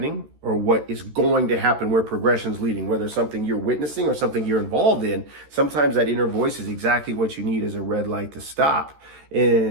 or what is going to happen, where progression's leading, whether it's something you're witnessing or something you're involved in. Sometimes that inner voice is exactly what you need as a red light to stop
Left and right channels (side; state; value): left; late; 13 ms